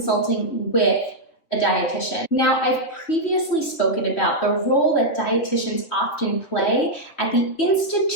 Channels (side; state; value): right; late; 3.3 ms